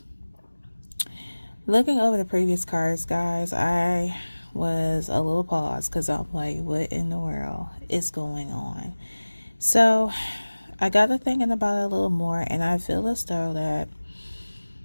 looking over the previous cards, guys, I was a little paused because I'm like, what in the world is going on? So, I got to thinking about it a little more, and I feel as though that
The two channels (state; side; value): inverted; both; correlation -1.00